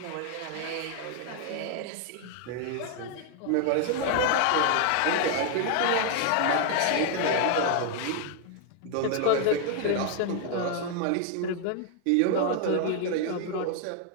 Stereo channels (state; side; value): different; both; correlation 0.00